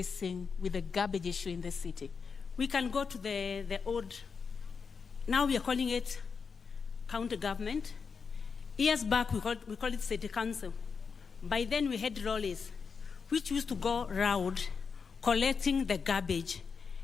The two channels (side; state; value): right; quieter; 5.6 dB